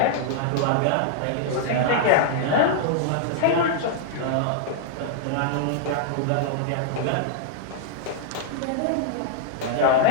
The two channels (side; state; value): both; different; correlation -0.01